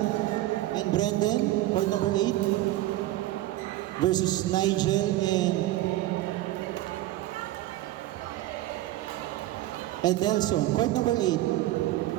and Brendan. Court number 8 versus Nigel and Edelson. Court number 8.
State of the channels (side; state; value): left; quieter; 15.7 dB